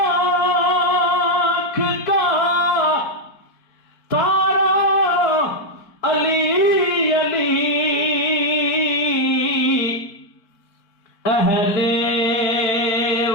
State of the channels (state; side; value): late; right; 4.6 ms